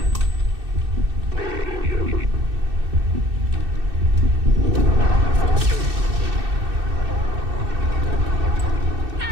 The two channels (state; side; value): late; left; 2.6 ms